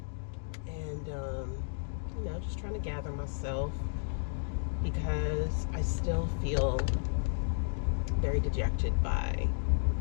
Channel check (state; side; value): silent; right; digital silence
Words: And, you know, just trying to gather myself because I still feel very dejected by